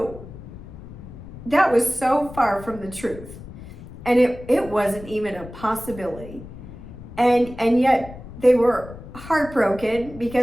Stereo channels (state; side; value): noise; left; rumble, 15 dB below the sound